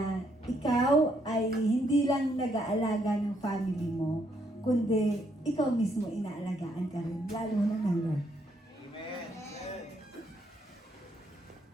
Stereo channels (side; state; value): both; normal; correlation 0.73